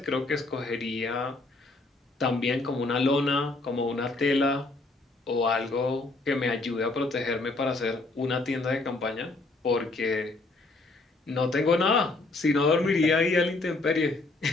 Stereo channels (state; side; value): quieter; right; 3.2 dB